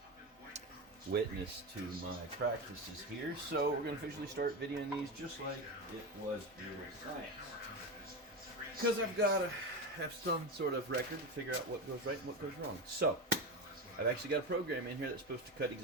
witness to my practices here, so we're going to officially start videoing these just like it was real science. Because I've got to have some sort of record to figure out what goes right and what goes wrong. So, I've actually got a program in here that's supposed to cut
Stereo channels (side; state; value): both; normal; correlation 0.19